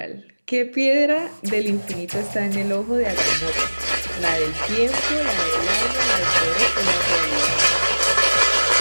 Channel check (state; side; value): inverted; both; correlation -1.00